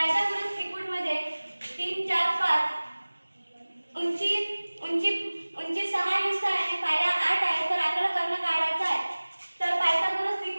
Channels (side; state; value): both; inverted; correlation -1.00